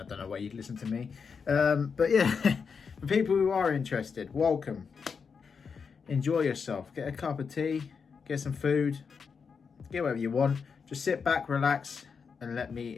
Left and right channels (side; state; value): right; quieter; 5.8 dB